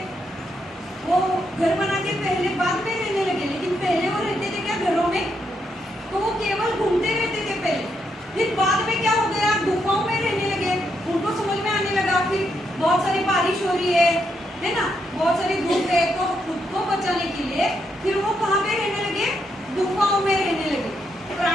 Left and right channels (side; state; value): both; normal; correlation 0.79